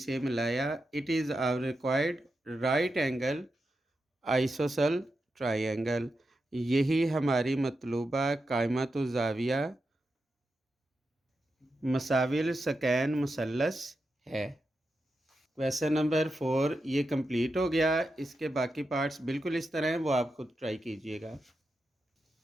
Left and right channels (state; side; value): normal; both; correlation 0.88